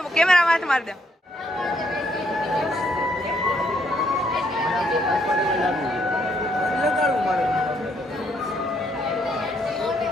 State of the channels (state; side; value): normal; both; correlation 0.72